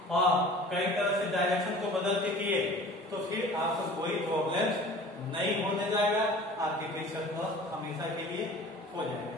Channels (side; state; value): both; normal; correlation 0.44